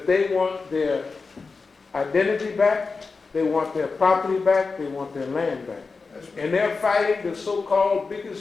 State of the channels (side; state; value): right; quieter; 4.4 dB